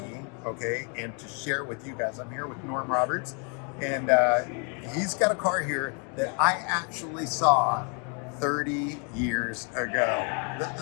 okay, and to share with you guys. I'm here with Norm Roberts, and he's got a car here that I actually saw 30 years ago.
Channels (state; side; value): quieter; right; 38.1 dB